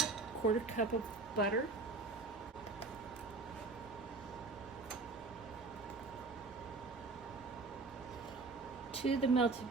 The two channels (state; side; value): quieter; left; 3.7 dB